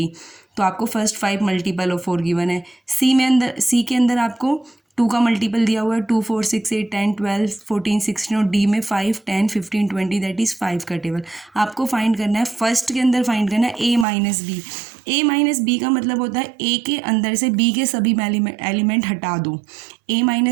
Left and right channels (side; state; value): left; drops out; at 14.1 s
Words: तो आपको फर्स्ट 5 मल्टीपल ऑफ 4 गिवन है. सी के अंदर आपको 2 का मल्टीपल दिया हुआ है 2, 4, 6, 8, 10, 12, 14, 16 और डी में 5, 10, 15, 20 दैट इज़ 5 का टेबल आपको फाइंड करना है. फर्स्ट के अंदर फाइंड करना है ए माइनस बी. ए माइनस बी का मतलब होता है ए के अंदर से बी के सभी एलिमेंट हटा दो. ए